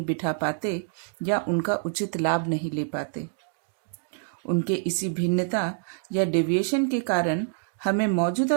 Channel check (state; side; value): silent; left; digital silence